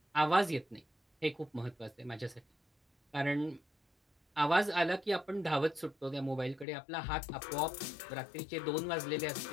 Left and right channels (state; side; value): drops out; right; at 6.7 s